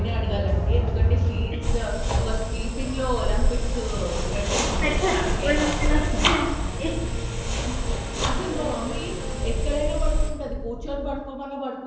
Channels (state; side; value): identical; both; correlation 1.00